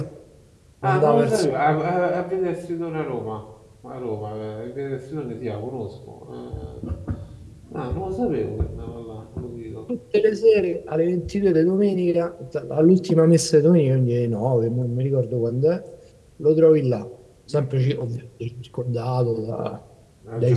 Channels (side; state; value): both; identical; correlation 1.00